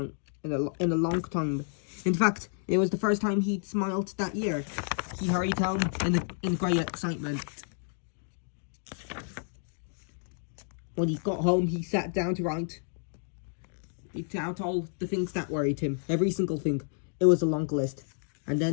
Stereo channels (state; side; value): silent; right; digital silence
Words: In a long time. In fact, it was the first time he'd smiled that year. He hurried home in great excitement. When he got home, he sat down to write out all the things that worried him. Every single thing. It was a long list. And